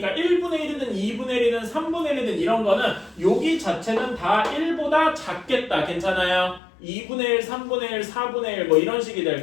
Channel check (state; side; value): drops out; right; at 6.6 s